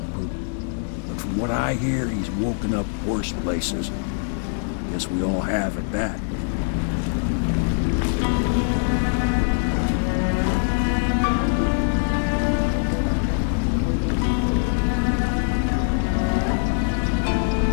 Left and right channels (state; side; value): silent; right; 59 dB below the other